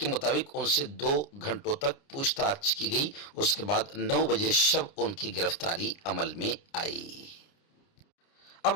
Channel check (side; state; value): right; late; 29 ms